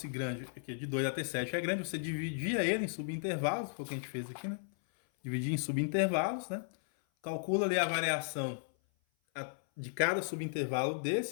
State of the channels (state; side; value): silent; right; 54 dB below the other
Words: grande, aqui de 2 até 7 é grande, você dividia ele em subintervalos, foi o que a gente fez aqui, né? Dividir em subintervalos, né? Calcula ali a variação de cada subintervalo